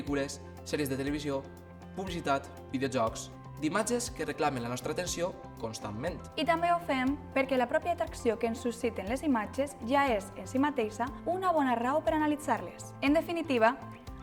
sèries de televisió, publicitat, videojocs, d'imatges que reclamen la nostra atenció constantment. I també ho fem perquè la pròpia atracció que ens susciten les imatges ja és, en si mateixa, una bona raó per analitzar-les. En definitiva,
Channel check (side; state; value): both; identical; correlation 1.00